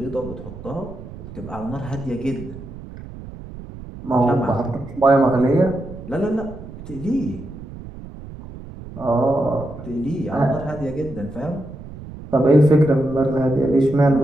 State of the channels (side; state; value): right; noise; rumble, 14 dB below the sound